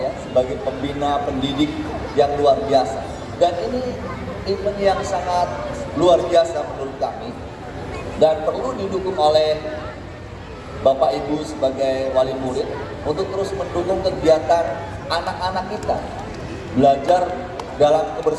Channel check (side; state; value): both; identical; correlation 1.00